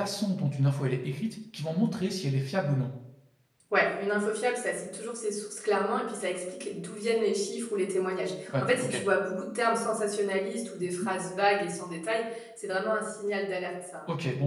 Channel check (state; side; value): identical; both; correlation 1.00